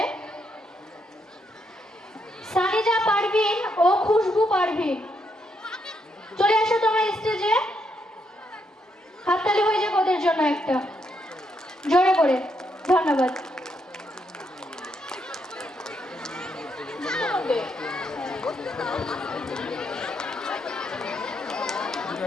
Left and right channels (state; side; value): normal; both; correlation 0.78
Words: সানিজা পারভিন ও খুশবু পারভিন। চলে আসো তোমরা স্টেজে, হাততালি হয়ে যাক ওদের জন্য একটা জোরে করে। ধন্যবাদ।